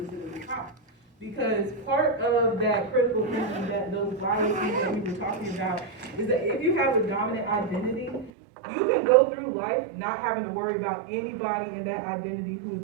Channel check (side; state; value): left; drops out; at 8.3 s